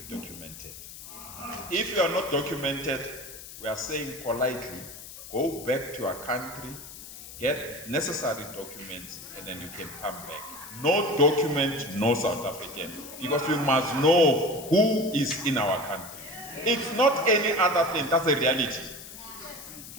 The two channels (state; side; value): noise; left; hiss, 14 dB below the sound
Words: documented. If you are not documented, we are saying politely, go back to your country, get necessary documents, and then you can come back. No document, no South African, because we must know who is in our country. It's not any other thing, that's a reality.